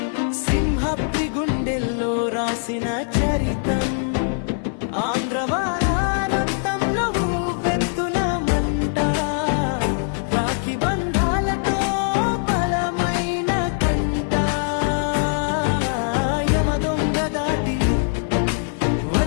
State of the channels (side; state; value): right; silent; 64 dB below the other